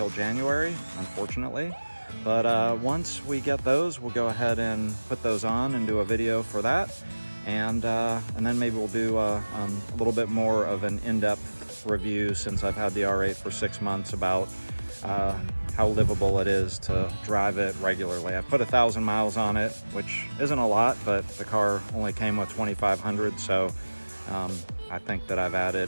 January, unfortunately. But once we get those, we'll go ahead and put those on and do a video for that. And then maybe we'll do a little bit more of an in-depth review, since I've had the R8 for 6 months, about how livable it is to drive it regularly. I put 1,000 miles on it, which isn't a lot, but the car only came with 2,500, so I think that I've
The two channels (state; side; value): inverted; both; correlation -1.00